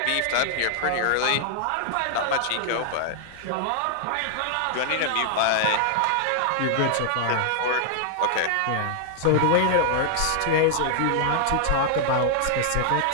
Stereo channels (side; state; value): both; different; correlation -0.01